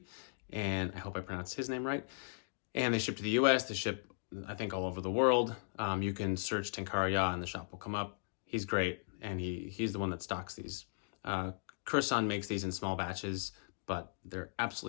and I hope I pronounced his name right. And they ship to the US, they ship, I think, all over the world. You can search Tenkara Ya and the shop will come up. He's great, and he's the one that stocks these. Kurasan makes these in small batches, but they're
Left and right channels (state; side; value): silent; right; digital silence